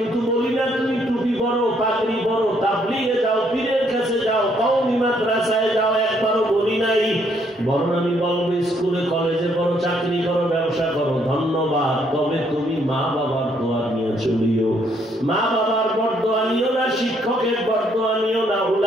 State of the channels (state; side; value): normal; both; correlation 0.69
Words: বলি না তুমি টুপি পরো, পাগড়ি পরো, তাবলীগে যাও, পীরের কাছে যাও, কওমি মাদ্রাসায় যাও, একবারও বলি নাই। বরং আমি বলবো স্কুলে কলেজে পড়ো, চাকরি করো, ব্যবসা করো, ধন্যবাদ। তবে তুমি মা বাবার দোয়া নিয়ে চলিও। মা বাবার বরদোয়া নিও না, শিক্ষকের বরদোয়া নিও না,